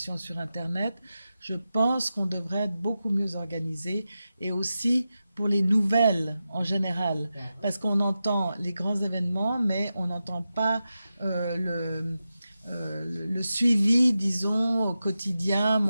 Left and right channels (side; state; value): both; inverted; correlation -0.91